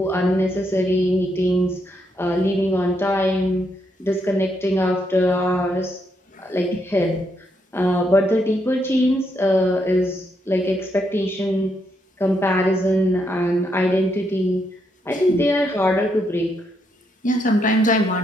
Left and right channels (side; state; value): both; normal; correlation 0.78